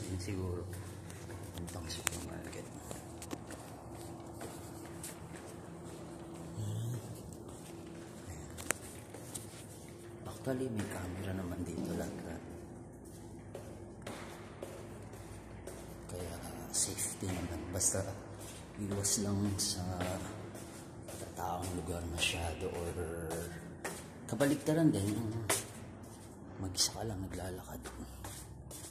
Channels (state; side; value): identical; both; correlation 1.00